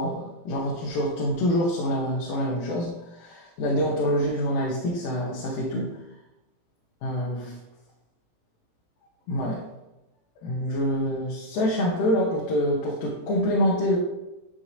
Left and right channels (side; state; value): right; late; 18 ms